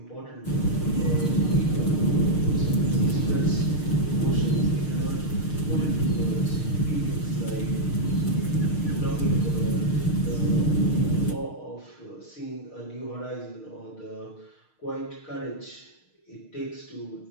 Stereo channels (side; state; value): right; late; 6.5 ms